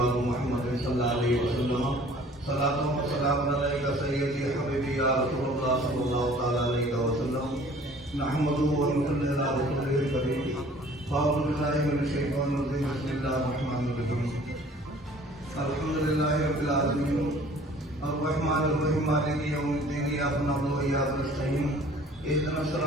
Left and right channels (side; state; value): both; normal; correlation 0.52